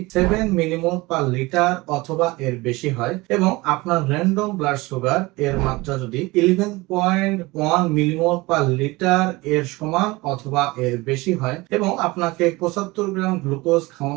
7 মিলিমোল পার লিটার অথবা এর বেশি হয় এবং আপনার র্যান্ডম ব্লাড সুগার এর মাত্রা যদি 11.1 মিলিমোল পার লিটার এর সমান অথবা এর বেশি হয় এবং আপনাকে 75 গ্রাম গ্লুকোজ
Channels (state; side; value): quieter; left; 22.1 dB